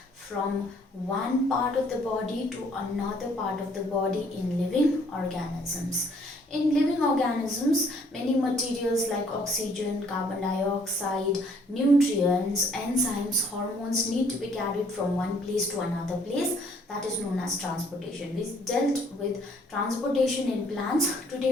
from one part of the body to another part of the body in living organisms. In living organisms, many materials like oxygen, carbon dioxide, nutrients, enzymes, hormones need to be carried from one place to another place. That is known as transportation. We dealt with transportation in plants.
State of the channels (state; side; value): normal; both; correlation 0.62